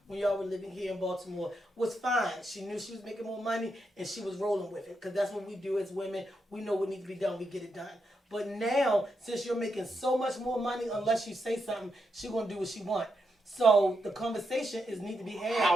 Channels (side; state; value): both; normal; correlation 0.83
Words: when y'all were living here in Baltimore was fine. She knew she was making more money and she was rolling with it because that's what we do as women. We know what needs to be done. We get it done. But now, since you're making so much more money, unless you say something, she's going to do what she wants. So the conversation need to be had.